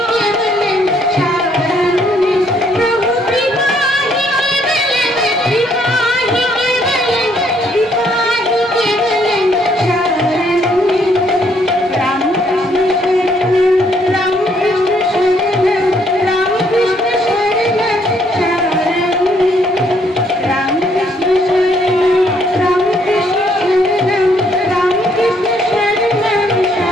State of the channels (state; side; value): normal; both; correlation 0.68